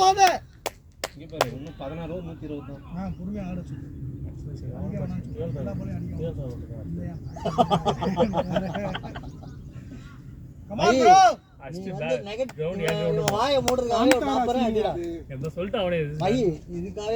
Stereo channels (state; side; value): identical; both; correlation 1.00